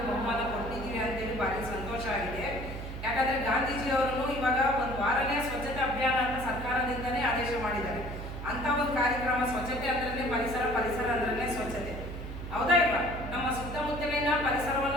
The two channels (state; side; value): noise; right; hum, 8 dB below the sound